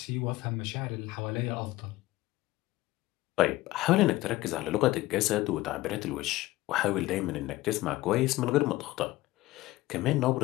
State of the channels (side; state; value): right; quieter; 17.8 dB